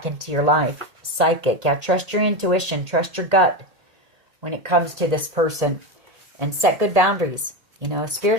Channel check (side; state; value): left; late; 1.8 ms